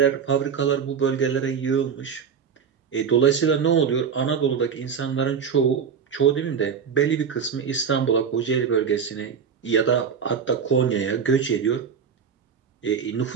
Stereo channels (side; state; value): left; quieter; 6.8 dB